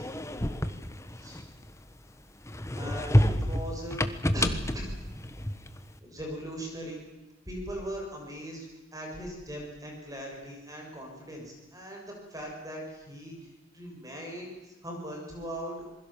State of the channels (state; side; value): normal; both; correlation 0.79